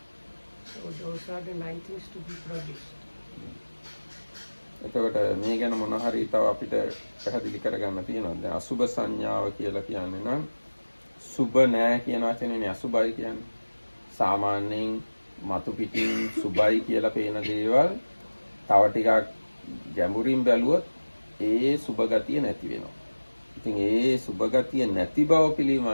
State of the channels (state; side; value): inverted; both; correlation -1.00